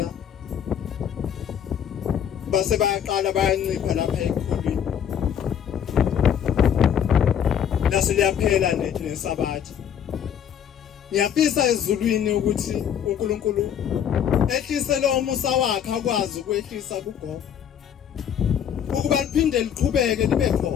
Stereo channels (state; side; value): quieter; right; 8.9 dB